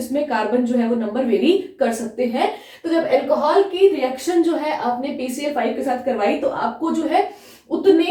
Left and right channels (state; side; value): identical; both; correlation 1.00